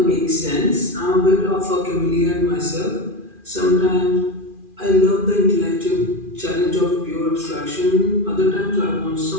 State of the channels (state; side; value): late; left; 2.4 ms